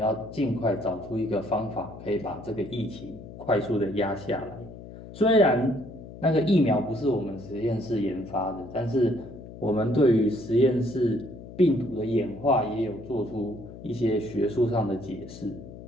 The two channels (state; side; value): noise; left; hum, 14 dB below the sound